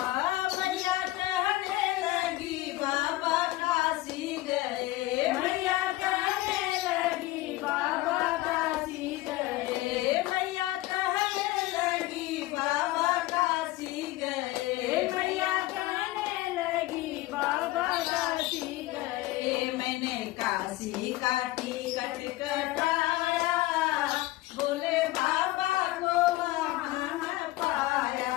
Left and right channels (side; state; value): right; quieter; 17.8 dB